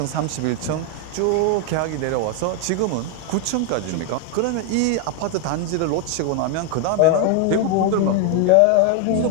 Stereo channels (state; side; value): different; both; correlation 0.01